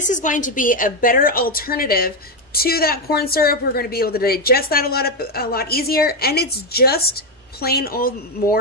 is going to be a better alternative to that corn syrup. We're going to be able to digest that a lot easier, and it's just plain old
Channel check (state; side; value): normal; both; correlation 0.06